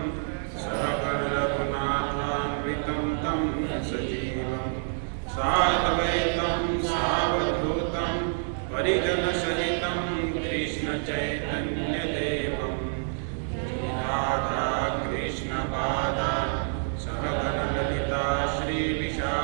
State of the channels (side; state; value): left; silent; digital silence